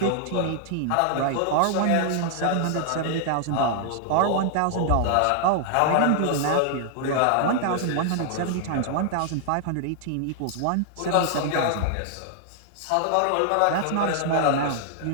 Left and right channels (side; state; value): both; different; correlation -0.01